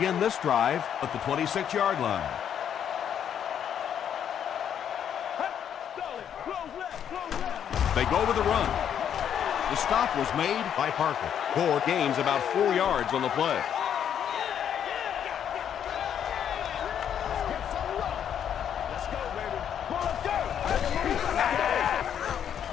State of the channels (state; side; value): quieter; right; 9.0 dB